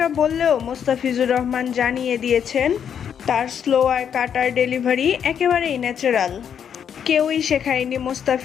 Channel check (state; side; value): quieter; right; 8.2 dB